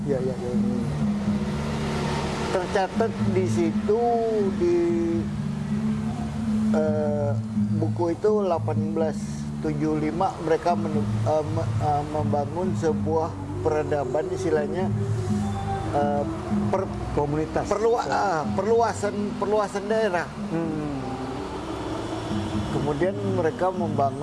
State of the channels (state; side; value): identical; both; correlation 1.00